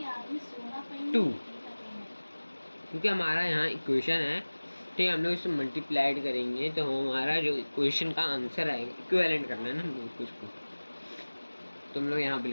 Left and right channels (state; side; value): inverted; both; correlation -1.00